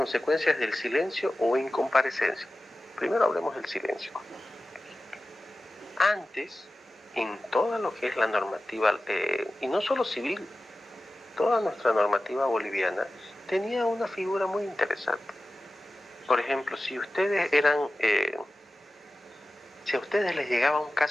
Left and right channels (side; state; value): both; normal; correlation 0.95